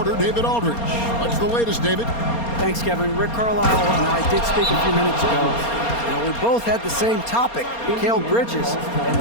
David Aldridge. What's the latest, David? Thanks, Kevin. Rick Carlisle and I did speak a few minutes ago. We both had the same topic, Mikal Bridges, and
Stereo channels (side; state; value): right; late; 4.3 ms